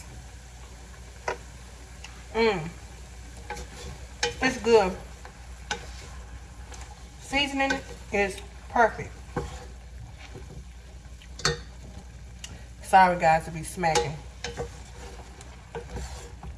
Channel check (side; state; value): both; identical; correlation 1.00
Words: It's good. Seasoning is perfect. Sorry guys to be smacking.